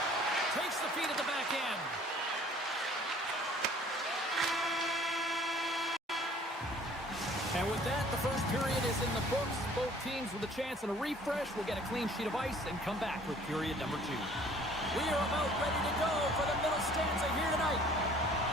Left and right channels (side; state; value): both; normal; correlation 0.54